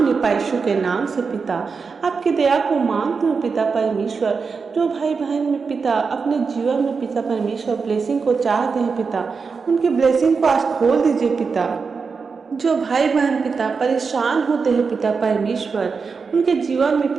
पाए यीशु के नाम से पिता। आपकी दया को मांगती हूँ पिता परमेश्वर। जो भाई बहन में पिता अपने जीवन में पिता परमेश्वर ब्लेसिंग को चाहते हैं पिता, उनकी ब्लेसिंग को आज खोल दीजिए पिता। जो भाई बहन पिता परेशान होते हैं पिता परमेश्वर, उनके जीवन में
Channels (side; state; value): left; quieter; 5.1 dB